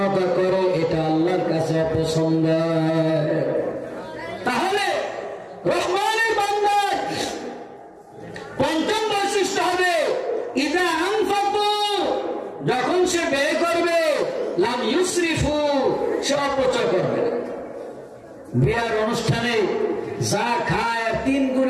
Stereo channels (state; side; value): identical; both; correlation 1.00